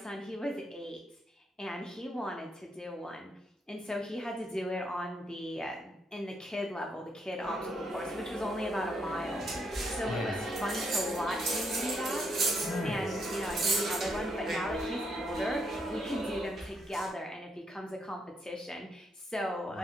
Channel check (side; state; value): both; normal; correlation 0.76